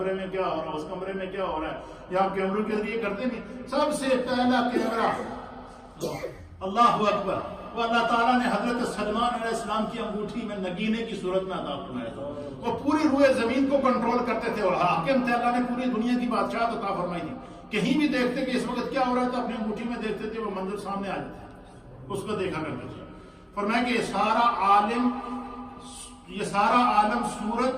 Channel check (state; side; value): identical; both; correlation 1.00